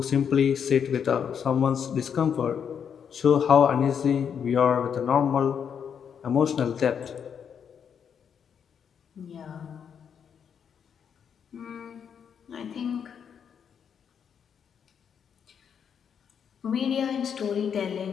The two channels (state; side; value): quieter; right; 7.6 dB